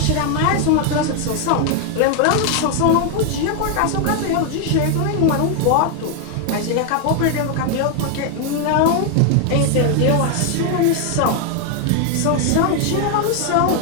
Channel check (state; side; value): different; both; correlation 0.00